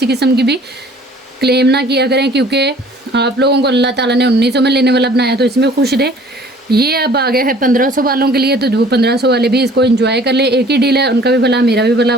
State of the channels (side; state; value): both; normal; correlation 0.52